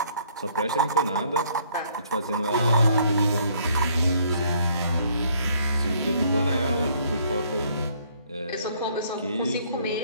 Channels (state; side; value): inverted; both; correlation -0.63